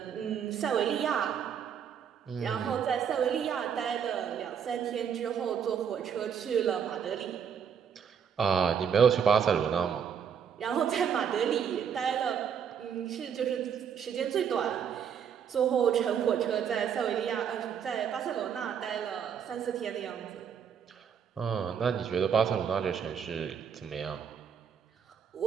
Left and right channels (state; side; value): quieter; left; 7.7 dB